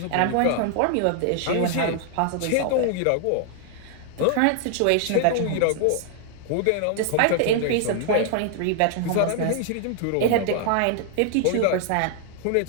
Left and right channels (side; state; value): both; different; correlation 0.00